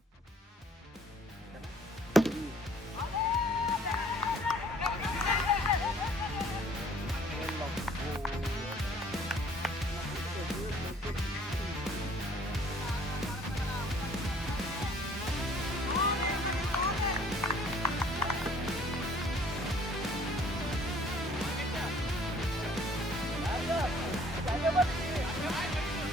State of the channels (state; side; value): normal; both; correlation 0.57